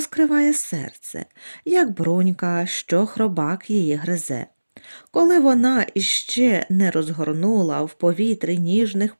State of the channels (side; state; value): both; inverted; correlation -1.00